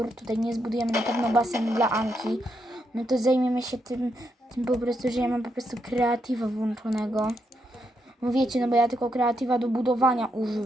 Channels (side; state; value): both; normal; correlation 0.81